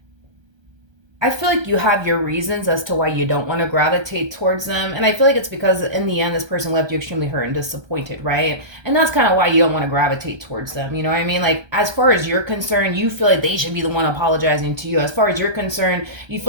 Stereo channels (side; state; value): left; late; 1.3 ms